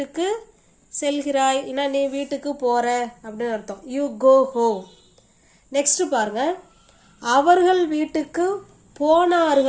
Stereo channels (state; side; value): identical; both; correlation 1.00